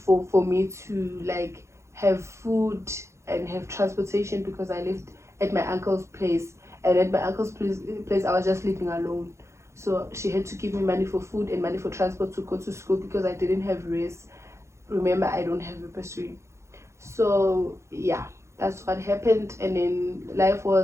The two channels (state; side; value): late; left; 0.14 ms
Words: for me to like have food and have transportation, because I lived at my uncle's place, and at my uncle's place I was just living alone. So she had to give me money for food and money for transport to go to school, because I didn't have race. Remember, I don't have a bursary. So that's what happened. And then life